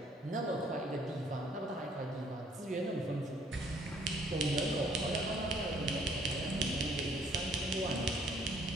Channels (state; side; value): normal; both; correlation 0.62